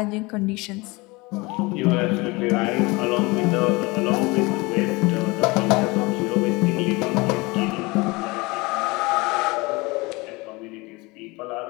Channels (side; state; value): right; quieter; 24.4 dB